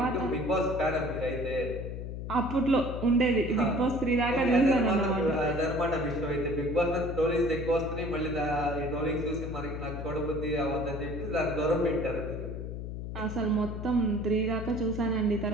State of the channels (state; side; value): noise; left; hum, 6 dB below the sound